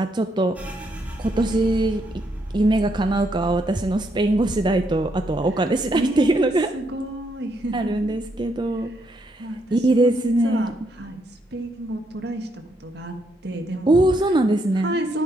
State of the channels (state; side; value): normal; both; correlation 0.76